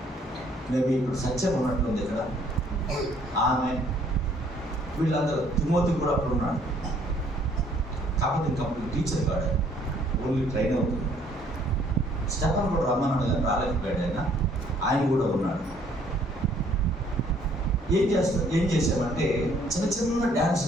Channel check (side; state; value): both; normal; correlation 0.62